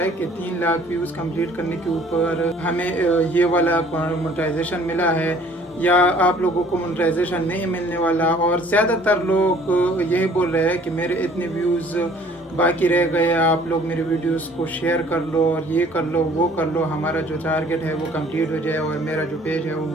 कि 3 लाख व्यूज कंप्लीट करने के ऊपर हमें ये वाला मोनेटाइजेशन मिला है या आप लोगों को मोनेटाइजेशन नहीं मिलने वाला। और ज़्यादातर लोग यही बोल रहे हैं कि मेरे इतने व्यूज़ बाकी रह गए, आप लोग मेरे वीडियोस को शेयर कर लो और ये कर लो वो कर लो, हमारा जो टारगेट है वो कंप्लीट हो जाए और मेरा जो पेज है वो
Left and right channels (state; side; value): normal; both; correlation 0.55